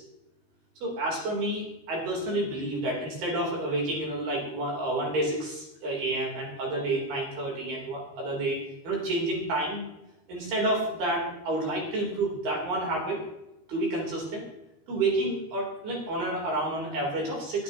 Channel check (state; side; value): late; left; 13 ms